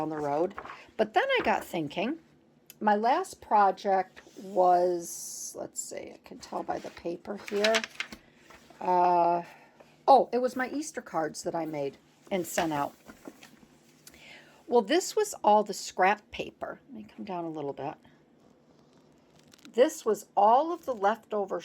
the road. But then I got thinking, my last project was, let's see, I can tell by the paper here. It was my Easter cards that I made and sent out. Well, this was all the scrap paper. Let me come down a little bit. This was all of the leftover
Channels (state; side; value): identical; both; correlation 1.00